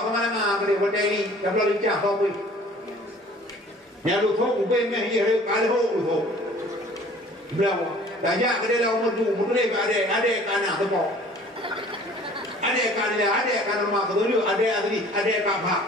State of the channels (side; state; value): both; normal; correlation 0.50